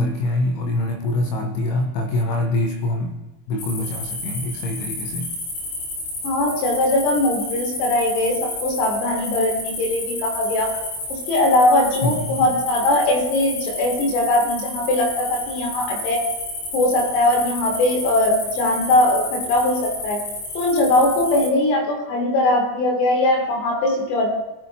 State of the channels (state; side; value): late; right; 24 ms